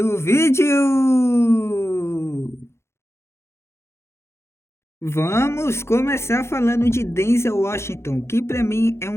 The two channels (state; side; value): late; right; 0.13 ms